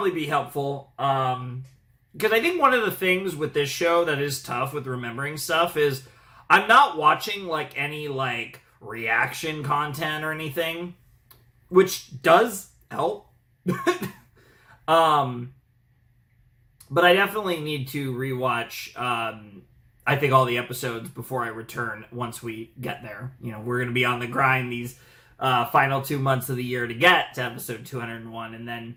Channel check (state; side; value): identical; both; correlation 1.00